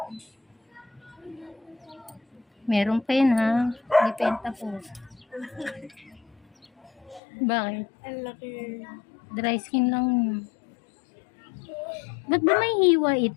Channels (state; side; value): drops out; right; at 7.2 s